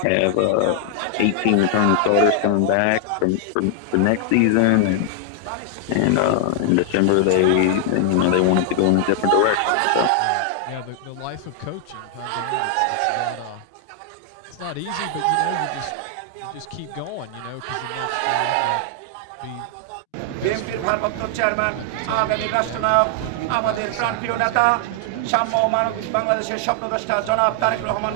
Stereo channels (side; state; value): both; different; correlation 0.00